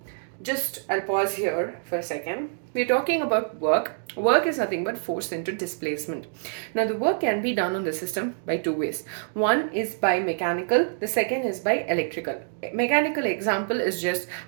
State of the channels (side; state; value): left; silent; digital silence